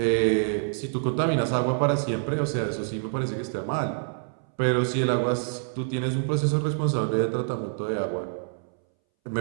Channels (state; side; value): silent; left; 61 dB below the other